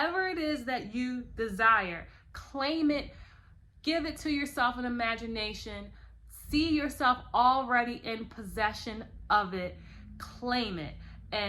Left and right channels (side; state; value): both; identical; correlation 1.00